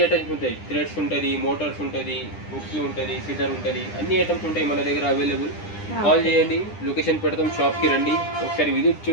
ఐటమ్స్ ఉంటాయి, థ్రెడ్స్ ఉంటుంది, మోటార్స్ ఉంటుంది, హుక్స్ ఉంటుంది, సిజర్ ఉంటుంది, అన్ని ఐటమ్స్ ఉంటాయి మన దగ్గర అవైలబుల్. కాల్ చేయండి, లొకేషన్ పెడతాం, షాప్కి రండి, ఒకసారి విజిట్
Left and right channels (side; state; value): right; late; 9.9 ms